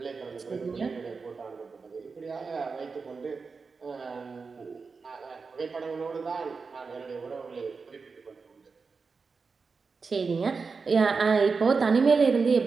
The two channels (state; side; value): quieter; left; 4.8 dB